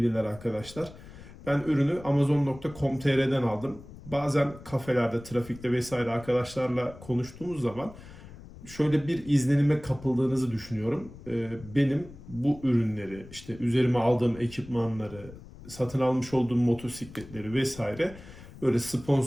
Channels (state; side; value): noise; left; rumble, 18 dB below the sound